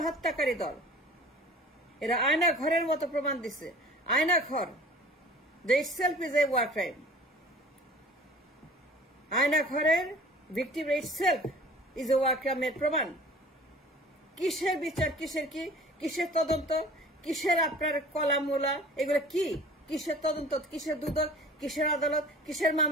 দল। এরা আয়না ঘরের মতো প্রমাণ দিচ্ছে। আয়না ঘর যে itself is a war crime. আয়না ঘরের victim itself is a war crime এর প্রমাণ। কিসের বিচার, কিসের তদন্ত, কিসের আপনার কলামুলা, এগুলো কি? কিসের তদন্ত, কিসের দুদক, কিসের আদালত, কিসের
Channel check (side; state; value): both; normal; correlation 0.45